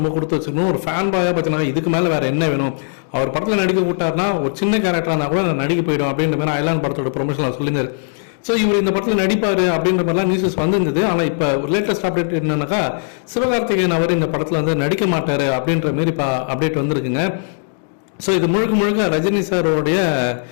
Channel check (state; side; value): silent; right; digital silence